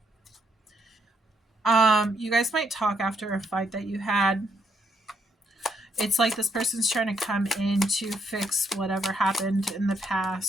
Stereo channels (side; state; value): both; normal; correlation 0.73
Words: You guys might talk after a fight that you had. It's like this person's trying to come in to fix whatever happened in the